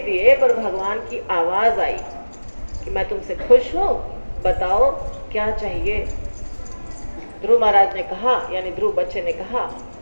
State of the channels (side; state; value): both; inverted; correlation -1.00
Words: दिए, पर भगवान की आवाज आई कि मैं तुमसे खुश हूं, बताओ क्या चाहिए। ध्रुव महाराज ने कहा, यानी ध्रुव बच्चे ने कहा